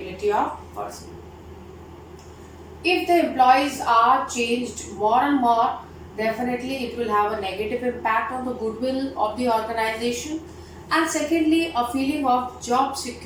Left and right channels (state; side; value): identical; both; correlation 1.00